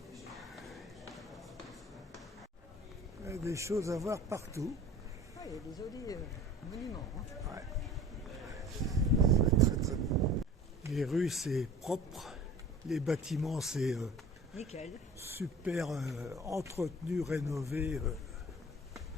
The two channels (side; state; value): both; normal; correlation 0.42